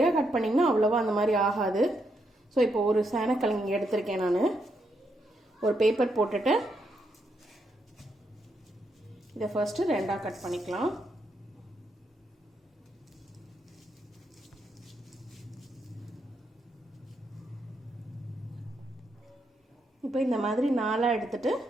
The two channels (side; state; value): both; normal; correlation 0.79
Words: கட் பண்ணிங்கன்னா அவ்வளோவா அந்த மாதிரி ஆகாது. ஸோ இப்போ ஒரு சேனக்கிழங்கு எடுத்திருக்கேன். நான் ஒரு பேப்பர் போட்டுட்டு இதை ஃபர்ஸ்ட்டு ரெண்டாக கட் பண்ணிக்கலாம். இப்போ இந்த மாதிரி நாலாக எடுத்துட்டு